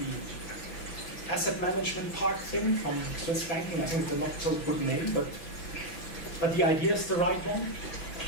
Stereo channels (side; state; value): right; late; 6.0 ms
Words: asset management park thing from Swiss banking. I think it's a not so good name, but the idea is the right one.